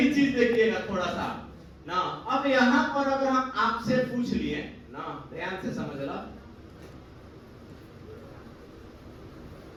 चीज देखिएगा थोड़ा सा ना। अब यहां पर अगर हम आपसे पूछ लिए ना, ध्यान से समझ लो,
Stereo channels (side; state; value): both; identical; correlation 1.00